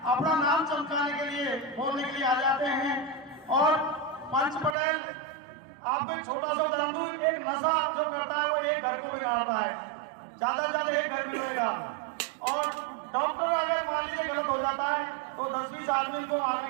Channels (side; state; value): left; drops out; at 4.8 s